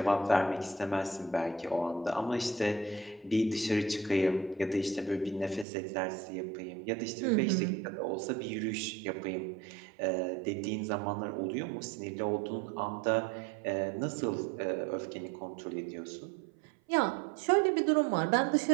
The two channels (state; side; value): drops out; left; at 5.7 s